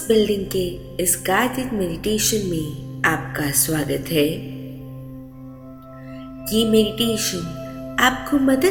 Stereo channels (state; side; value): identical; both; correlation 1.00